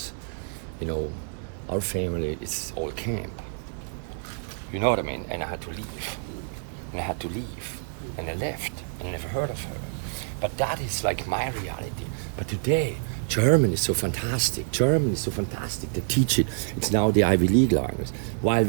our family is all camp. You know what I mean? And I had to leave. And I left. And I never heard of her. But that is like my reality. But today, German is so fantastic. They teach it. It's now the Ivy League language. While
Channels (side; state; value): left; silent; 60 dB below the other